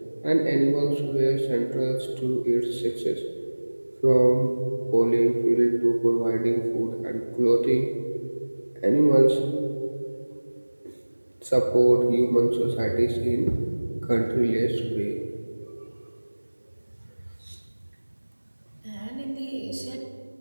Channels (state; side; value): inverted; both; correlation -1.00